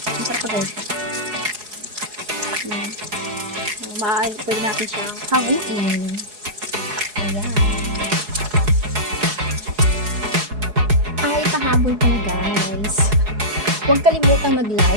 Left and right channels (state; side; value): late; left; 4.8 ms